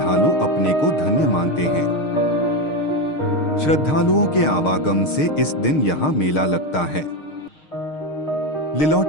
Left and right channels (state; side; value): late; right; 6.6 ms